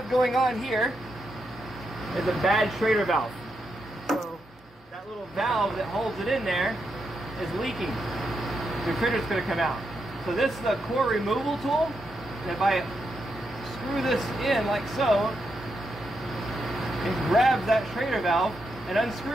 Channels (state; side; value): normal; both; correlation 0.83